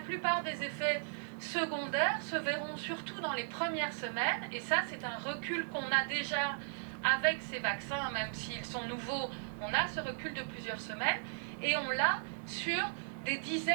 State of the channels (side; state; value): left; silent; 53 dB below the other